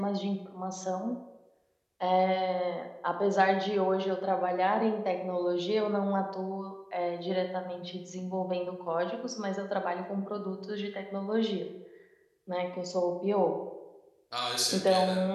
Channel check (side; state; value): both; identical; correlation 1.00